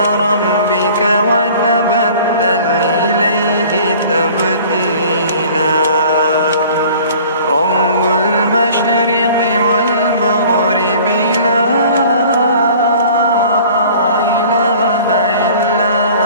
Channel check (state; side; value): inverted; both; correlation -0.48